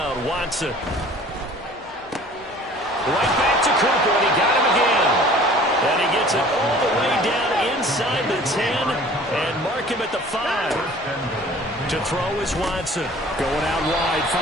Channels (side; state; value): both; normal; correlation 0.48